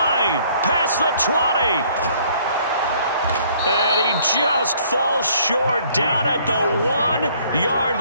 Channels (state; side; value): inverted; both; correlation -0.60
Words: Past the 20. And he just falls short down at the 1-yard